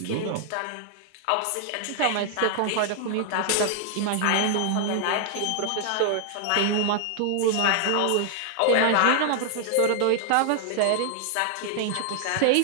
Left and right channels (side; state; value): both; different; correlation 0.00